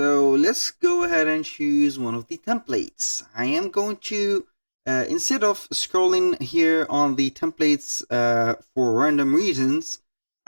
let's go ahead and choose one of the templates. I am going to, instead of scrolling here on the templates for random reasons,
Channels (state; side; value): inverted; both; correlation -1.00